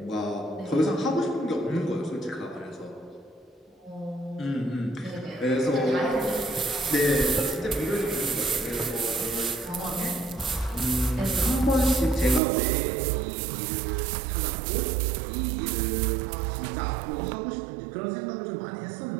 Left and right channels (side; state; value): left; drops out; at 12.4 s